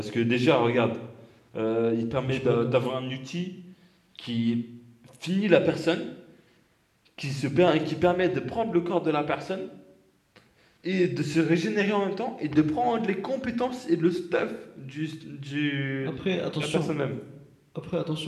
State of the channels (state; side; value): identical; both; correlation 1.00